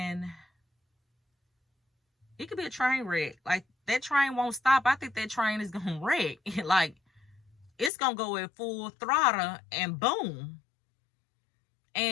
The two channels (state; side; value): drops out; right; at 7.9 s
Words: it could be a train wreck. Like, that train won't stop. I think that train is gonna wreck. Like, it's gonna go at full throttle and boom.